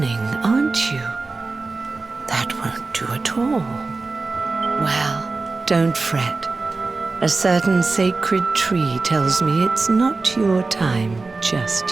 aren't you? That won't do at all. Well, don't fret. A certain sacred tree tells me it's not your time just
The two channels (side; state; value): left; quieter; 3.7 dB